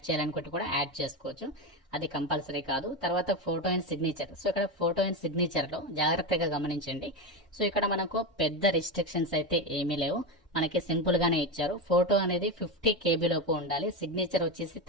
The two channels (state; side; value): normal; both; correlation 0.16